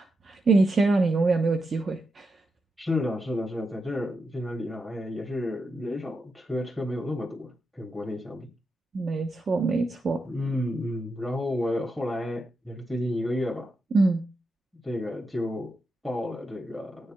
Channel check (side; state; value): both; normal; correlation 0.86